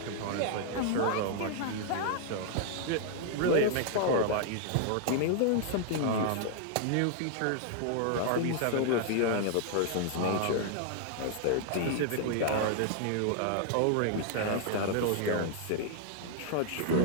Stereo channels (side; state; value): both; different; correlation 0.00